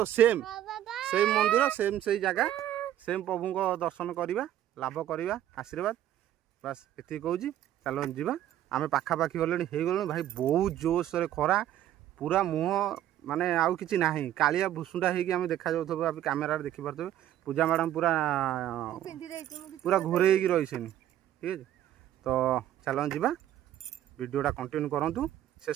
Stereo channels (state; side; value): quieter; left; 12.2 dB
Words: सेम सेम मंदिर सेम से जगह सेम प्रभु को दर्शन करवा लाभ करवा आशीर्वाद बस ये कहूँ। चलो जीवा आम पाखापाखि गले हो भाई बहुत जोश खरा पूरा मुह माने आउ कि ना कालिया भुसुंडा होगी देखा जाऊ कैमेरा देखिपे पूजा मैडम पूरा पूरा घोरे रही ठीक है। तो चलो जीवा वीडियोटा कंटिन्यू करूँ